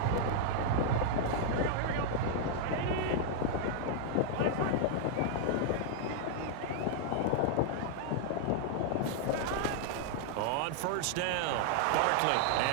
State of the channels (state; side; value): different; both; correlation -0.01